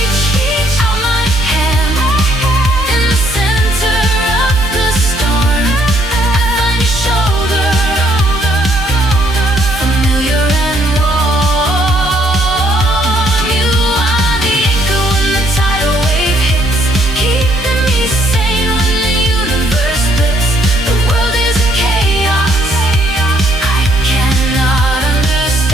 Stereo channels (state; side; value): normal; both; correlation 0.68